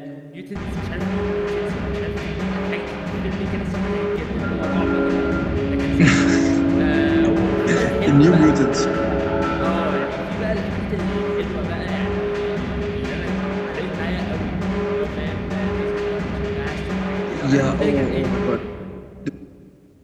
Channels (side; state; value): both; identical; correlation 1.00